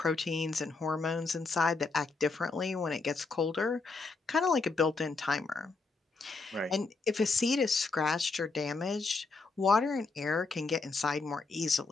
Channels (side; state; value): right; quieter; 4.0 dB